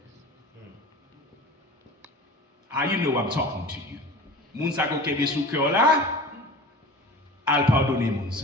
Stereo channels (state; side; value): normal; both; correlation 0.37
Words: Ah, you know I'm talking to you. Moun ça ko gen de sou cœur là al pardonner moun